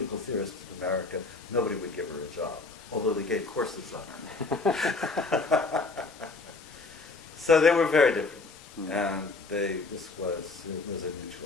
theorist in America, nobody would give her a job, although they gave courses on her. So they were very different, and it was a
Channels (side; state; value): right; quieter; 3.8 dB